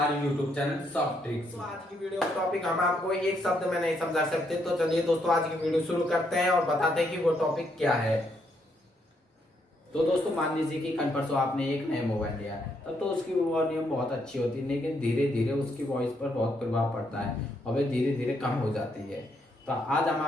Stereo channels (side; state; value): both; normal; correlation 0.75